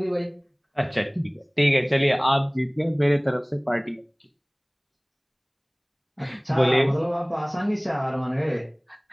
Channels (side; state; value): both; identical; correlation 1.00